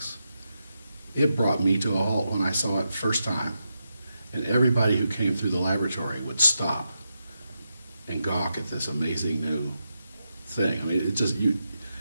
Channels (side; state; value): both; inverted; correlation -0.86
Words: It brought me to a halt when I saw it first time, and everybody who came through the laboratory would stop and gawk at this amazing new thing. I mean,